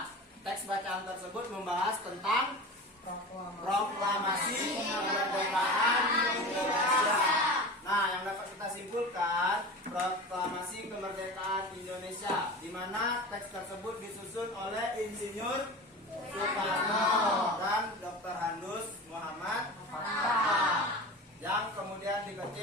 teks bacaan tersebut membahas tentang Proklamasi Kemerdekaan Indonesia. Nah, yang dapat kita simpulkan, Proklamasi Kemerdekaan Indonesia, di mana teks tersebut disusun oleh Insinyur Soekarno dan Dr. Handus Muhammad Hatta, yang kemudian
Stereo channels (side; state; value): both; normal; correlation 0.32